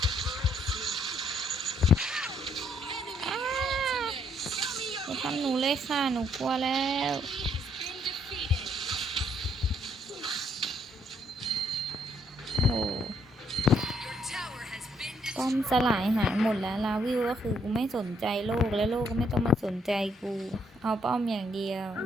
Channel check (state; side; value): normal; both; correlation 0.71